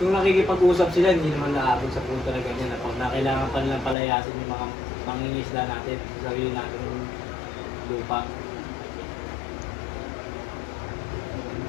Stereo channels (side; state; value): right; drops out; at 4.0 s